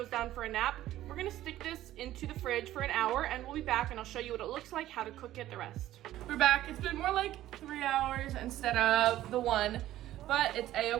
down for a nap, we're gonna stick this into the fridge for an hour, and we'll be back and I'll show you what it looks like, how to cook it the rest. We're back. It's been more like 3 hours instead of the 1, but it's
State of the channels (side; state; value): left; quieter; 14.0 dB